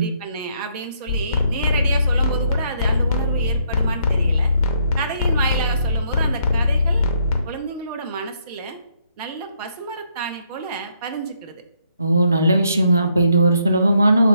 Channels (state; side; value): inverted; both; correlation -0.72